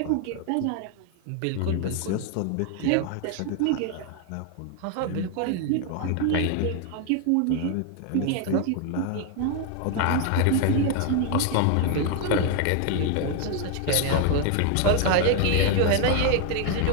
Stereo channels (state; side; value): different; both; correlation 0.01